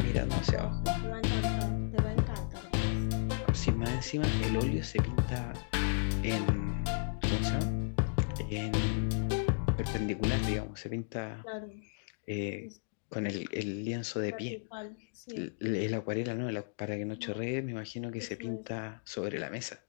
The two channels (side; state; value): right; silent; digital silence